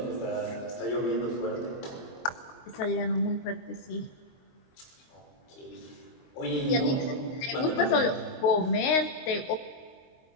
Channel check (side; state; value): right; late; 22 ms